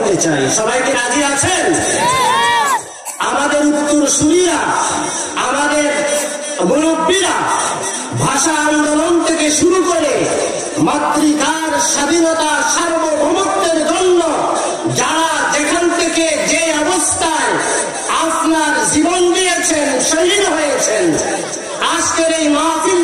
চাই। সবাইকে রাজি আছেন? আমাদের উত্তরসূরিরা, আমাদের মুরব্বীরা ভাষা আন্দোলন থেকে শুরু করে মাতৃকার স্বাধীনতা সার্বভৌমত্বের জন্য যারা যেখান থেকে যে অবস্থায় আপনার জীবন দিয়েছেন, শহীদ হয়েছেন, আজকের এই মাহফিল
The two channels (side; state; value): both; identical; correlation 1.00